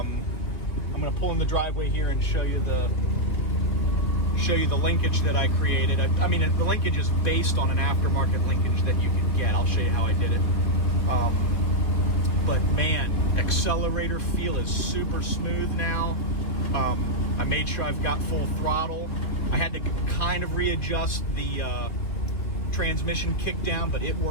going to pull in the driveway here and show you the linkage that I created. I mean, the linkage is based on an aftermarket linkage that you can get. I'll show you how I did it. But man, accelerator feel is super smooth now. I made sure I've got full throttle. I had to kind of readjust the transmission kick down, but it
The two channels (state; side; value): late; right; 3.0 ms